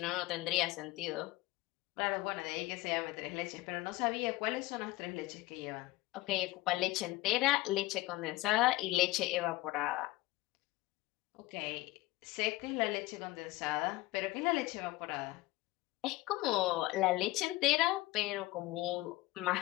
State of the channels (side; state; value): right; quieter; 18.9 dB